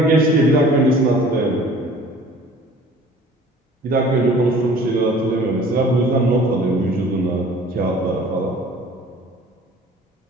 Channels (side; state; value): both; normal; correlation 0.48